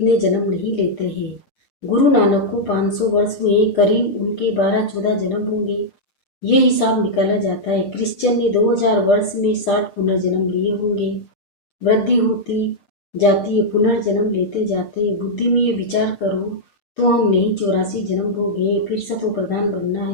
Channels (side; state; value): right; late; 7.0 ms